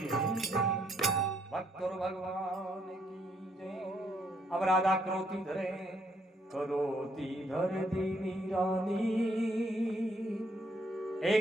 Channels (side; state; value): both; normal; correlation 0.71